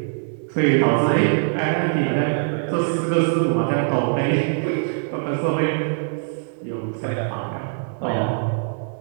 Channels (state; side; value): silent; left; 64 dB below the other